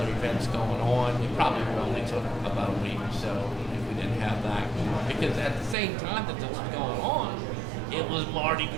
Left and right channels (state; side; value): drops out; left; at 5.8 s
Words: events going on. We probably only took about a week or so if we didn't have that. Because at the same time that this was going on, it was Mardi